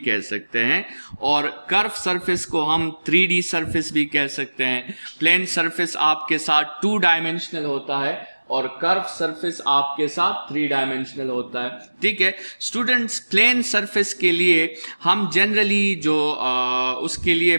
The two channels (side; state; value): both; inverted; correlation -1.00